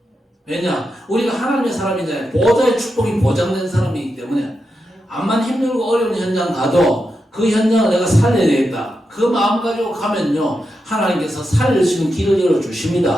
왜냐? 우리가 하나님의 사람이잖아요. 보좌의 축복이 보장된 사람이기 때문에 암만 힘들고 어려운 현장 가도 그 현장을 내가 살려야 되겠다. 그 마음 가지고 가면요, 하나님께서 살릴 수 있는 길을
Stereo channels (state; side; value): normal; both; correlation 0.87